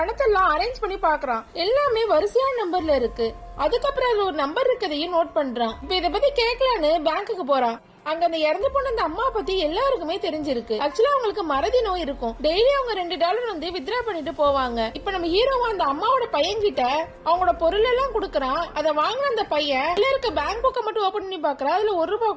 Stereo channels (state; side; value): identical; both; correlation 1.00